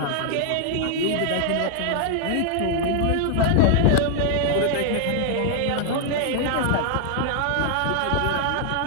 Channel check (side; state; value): both; different; correlation 0.00